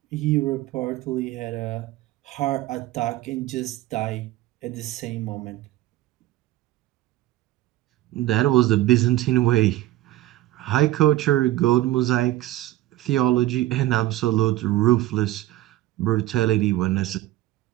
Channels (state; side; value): quieter; left; 15.6 dB